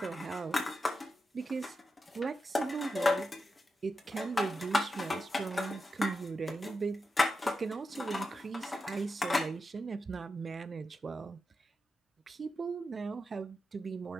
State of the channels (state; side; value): normal; both; correlation 0.88